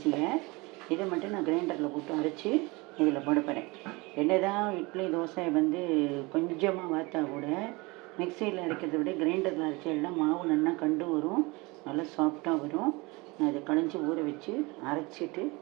இதை மட்டும் நான் கிரைண்டரில் போட்டு அரைச்சி இதில் போட போகிறேன். என்ன தான் இட்லி தோசை வந்து கொஞ்சமாக வார்த்தா கூட மிக்சியில் அரைக்கிறத விட கிரைண்டரில் அரைச்சா மாவு நல்லா கண்டு வரும், நல்லா சாஃப்டாக வரும். நான் இதை களைஞ்சி ஊற வச்சு அரைச்சிட்டு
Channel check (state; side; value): quieter; left; 24.9 dB